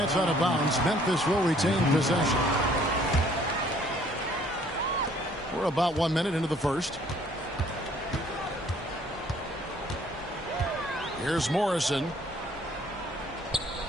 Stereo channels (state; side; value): normal; both; correlation 0.60